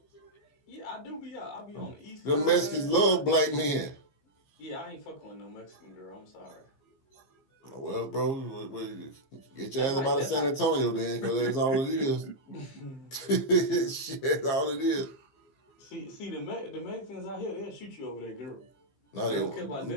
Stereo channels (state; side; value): late; right; 15 ms